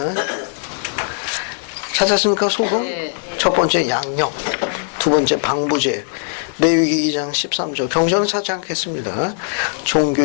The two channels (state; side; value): silent; right; 66 dB below the other